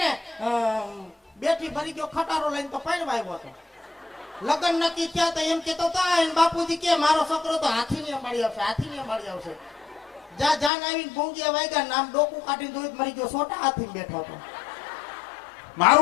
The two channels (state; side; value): drops out; right; at 10.7 s